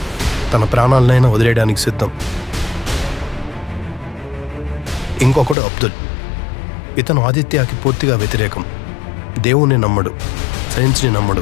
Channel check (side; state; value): right; drops out; at 5.6 s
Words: తన ప్రాణాలనైనా వదిలేయడానికి సిద్ధం. ఇంకొకడు అబ్దుల్. ఇతను ఆదిత్యకి పూర్తిగా వ్యతిరేకం. దేవుణ్ణి నమ్మడు, సైన్స్ని నమ్మడు,